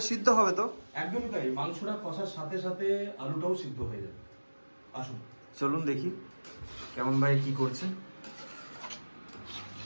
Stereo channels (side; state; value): both; inverted; correlation -1.00